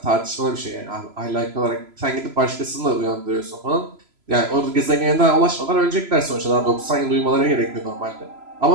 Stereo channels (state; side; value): late; left; 3.0 ms